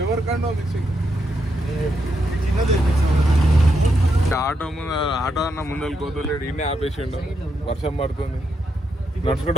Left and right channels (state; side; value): normal; both; correlation 0.81